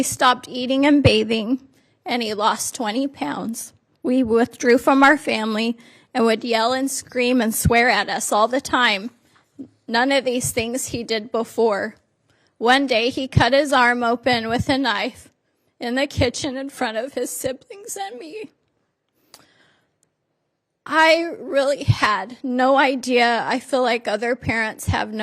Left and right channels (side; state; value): both; identical; correlation 1.00